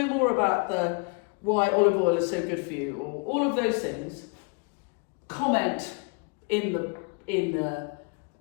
more about why olive oil is so good for you, or all of those things, comment in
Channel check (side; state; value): right; quieter; 34.2 dB